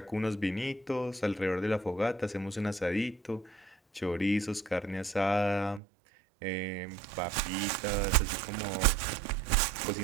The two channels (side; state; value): left; drops out; at 5.8 s